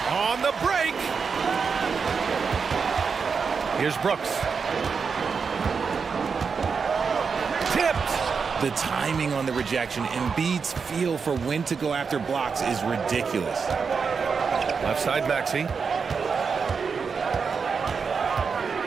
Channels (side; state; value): left; quieter; 5.6 dB